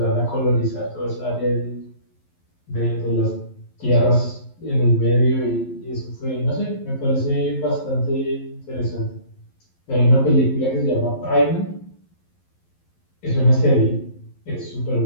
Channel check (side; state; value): right; late; 11 ms